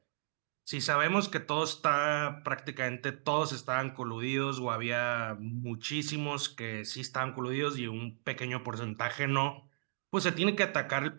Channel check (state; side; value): silent; left; digital silence